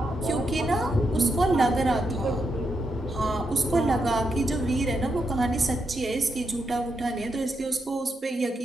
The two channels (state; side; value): normal; both; correlation 0.82